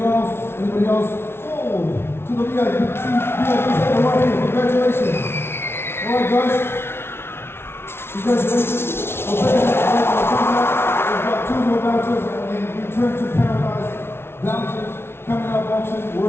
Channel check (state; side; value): late; right; 0.12 ms